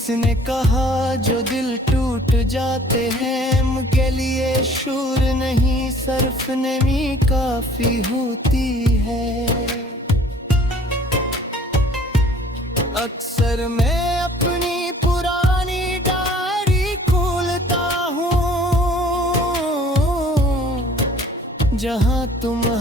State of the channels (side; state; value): both; normal; correlation 0.53